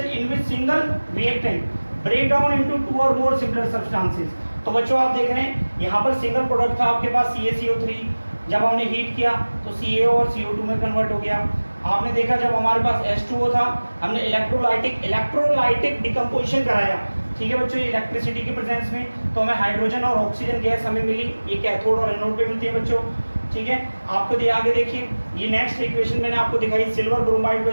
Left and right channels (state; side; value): inverted; both; correlation -1.00